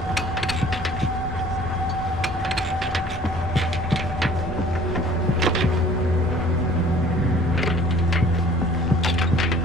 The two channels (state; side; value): normal; both; correlation 0.52